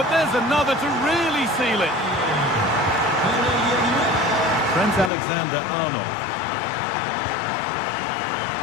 there's another to really seal it. Trent Alexander-Arnold.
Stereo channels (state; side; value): drops out; right; at 5.1 s